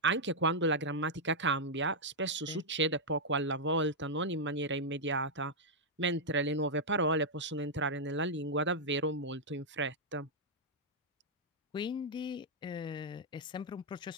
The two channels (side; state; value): both; normal; correlation -0.05